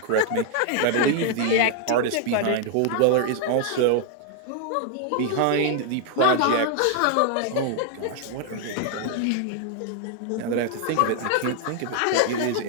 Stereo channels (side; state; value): both; different; correlation 0.00